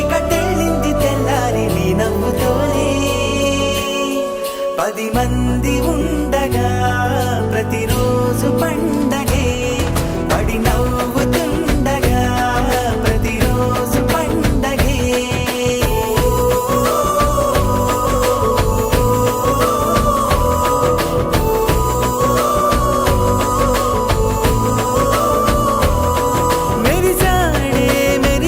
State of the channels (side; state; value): both; identical; correlation 1.00